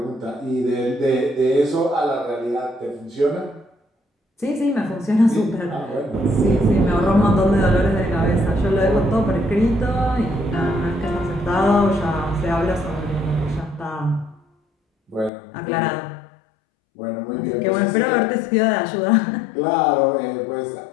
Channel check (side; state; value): right; drops out; at 15.3 s